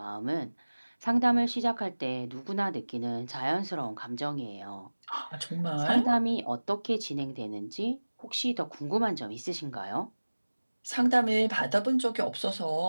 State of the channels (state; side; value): inverted; both; correlation -1.00